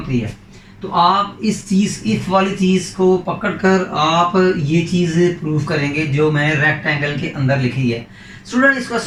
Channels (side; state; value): both; identical; correlation 1.00